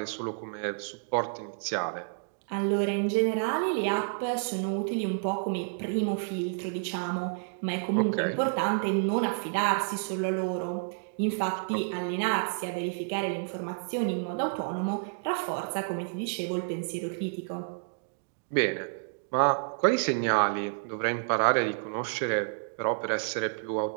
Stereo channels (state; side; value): silent; left; digital silence